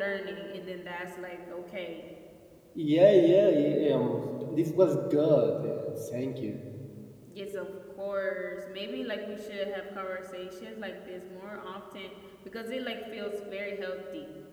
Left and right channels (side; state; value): both; identical; correlation 1.00